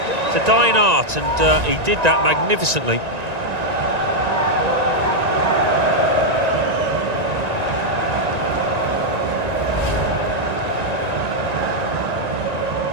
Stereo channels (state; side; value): late; left; 1.9 ms